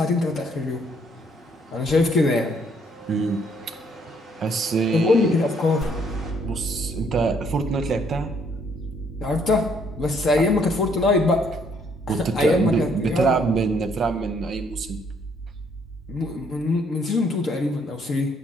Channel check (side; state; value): both; normal; correlation 0.66